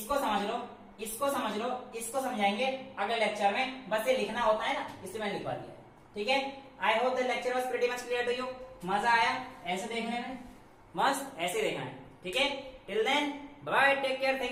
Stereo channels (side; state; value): both; identical; correlation 1.00